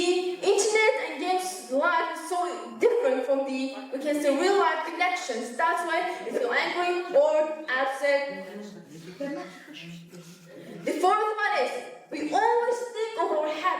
internet and games life is so different from the, we can say, real life connections. That's why we feel angry, bored, upset. The fourth one is we always think of our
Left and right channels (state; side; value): identical; both; correlation 1.00